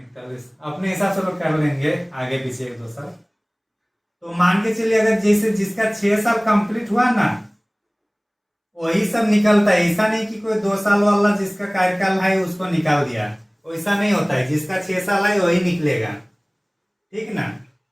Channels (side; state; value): both; identical; correlation 1.00